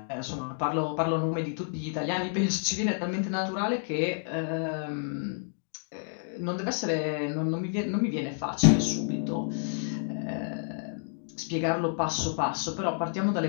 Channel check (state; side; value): silent; right; digital silence